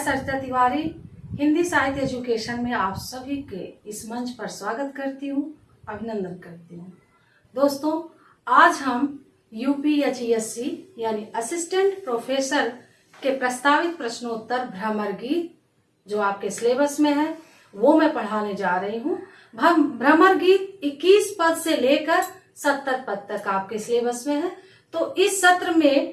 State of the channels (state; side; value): identical; both; correlation 1.00